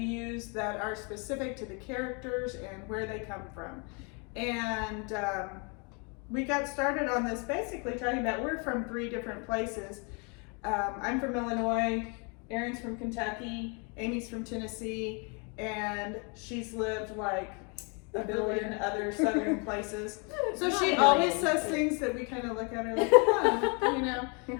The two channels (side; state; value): right; quieter; 34.3 dB